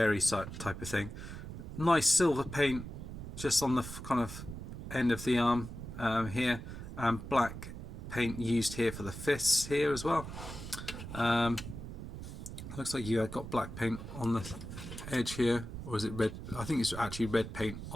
type of thing. Nice silver paint just on the kind of end of the arm here, and black paint used here for the fists here as well. Looks like you got black paint on the edge here, or is it red? I think it's actually red paint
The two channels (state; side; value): noise; right; rumble, 9 dB below the sound